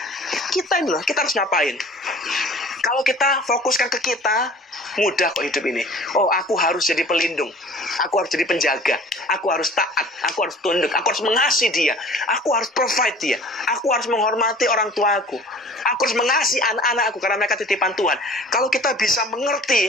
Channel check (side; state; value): both; normal; correlation 0.46